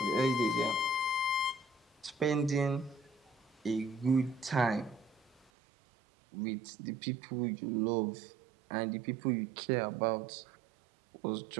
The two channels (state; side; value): drops out; left; at 5.5 s